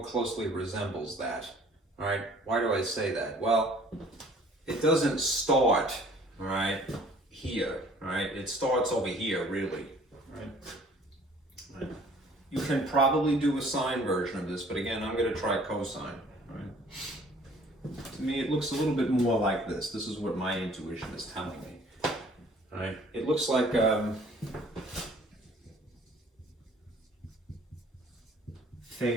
closely resembles that. All right, why do I say that? Well, it doesn't start, all right, here, all right? It starts over here, really, right? You can probably do a sine version of this, but again, I'm gonna try cosine, right? To me, it looks a little bit more like this. This is what my intuition is telling me, all right? It looks like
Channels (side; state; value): both; normal; correlation 0.54